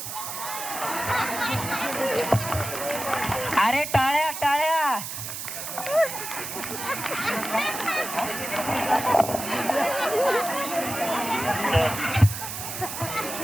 अरे टाळ्या टाळ्या.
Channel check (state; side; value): noise; right; hiss, 6 dB below the sound